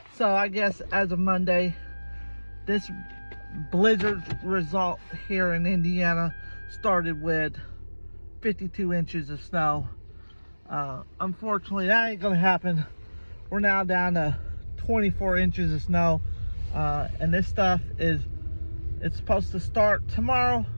I guess as of Monday, this blizzard result here in Indiana started with 52 inches of snow. Unfortunately, that ain't gonna happen. We're now down to 24 inches of snow, and this stuff it's supposed to start tomorrow.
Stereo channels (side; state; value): both; inverted; correlation -1.00